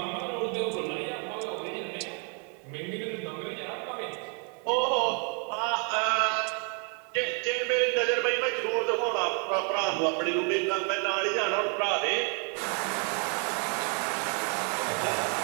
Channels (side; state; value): left; quieter; 38.8 dB